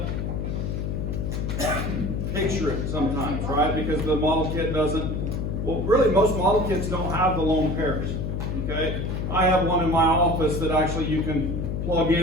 picture it sometimes, right? Because the model kit doesn't, well, really, most model kits don't have the lone pairs, okay? I have one in my office that actually you can plug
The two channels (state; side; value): noise; left; hum, 2 dB below the sound